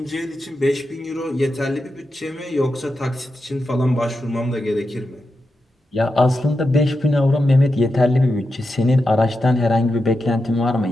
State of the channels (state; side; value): normal; both; correlation 0.88